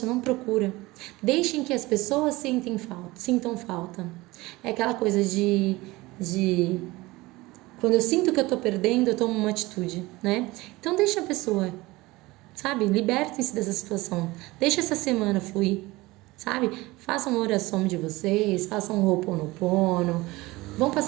não procura. Deixem que as pessoas sintam falta. É aquela coisa de quando eu sinto que eu tô perdendo, eu tomo uma atitude, né? Então deixa a pessoa, sabe? Libertem-se dessa situação. Deixa essa semana fluir, sabe? Façam uma oração de vocês, façam um Ho'oponopono, vão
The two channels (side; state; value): left; quieter; 20.6 dB